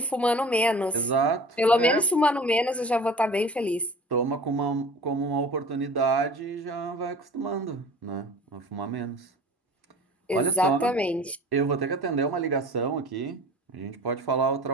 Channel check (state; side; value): normal; both; correlation 0.41